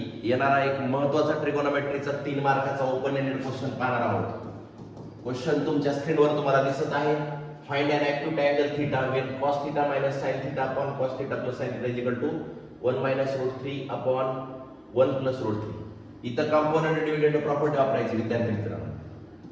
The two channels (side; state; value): both; identical; correlation 1.00